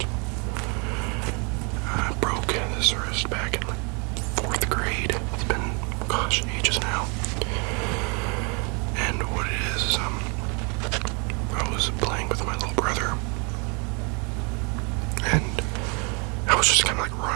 I broke this wrist back in like 4th grade. It's been, gosh, ages now. And what it is I was playing with my little brother, and I was just kind of like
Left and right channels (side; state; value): left; quieter; 33.8 dB